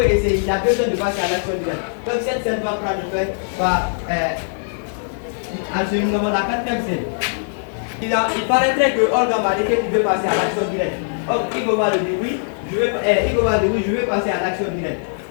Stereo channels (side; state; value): right; silent; digital silence